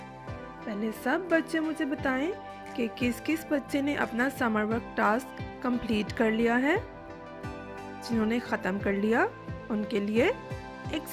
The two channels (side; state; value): both; identical; correlation 1.00